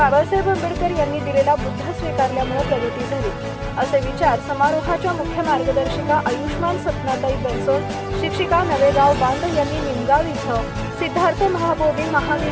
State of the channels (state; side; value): identical; both; correlation 1.00